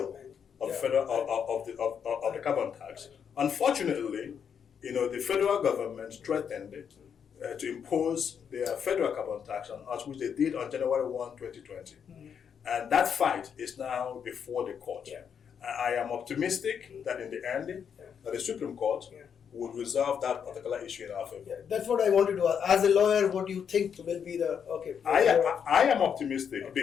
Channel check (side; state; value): right; quieter; 7.5 dB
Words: of the carbon tax. Unfortunately, the federal government threatened to impose their federal carbon tax on us, which they did on January 1, 2020. And that fight is now before the court. I am optimistic that in the end, that the Supreme Court would resolve that particular issue in our favor. That's what I wanted to ask. As a lawyer, what do you think will be the I am optimistic